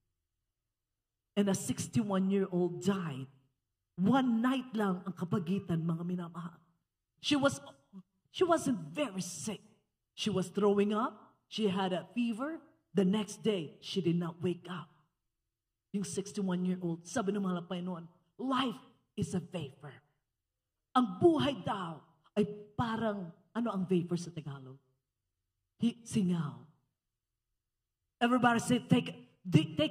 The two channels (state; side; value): identical; both; correlation 1.00